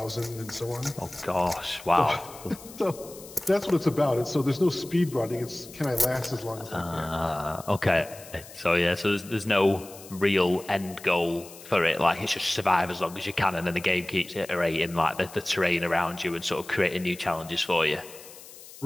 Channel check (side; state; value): left; noise; hiss, 18 dB below the sound